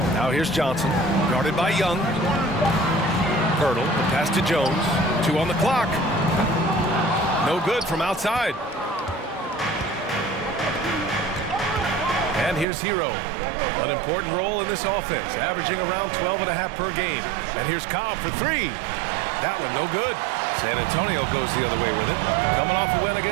Now here's Johnson, guarded by Young. Pirtle, the pass to Jones. 2 on the clock. No good from outside. And here's Hero. An important role in this offense, averaging around 12.5 per game. And here's Cobb for 3. That one no good. San Antonio goes the other way with it, coming off a win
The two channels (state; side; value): drops out; left; at 12.7 s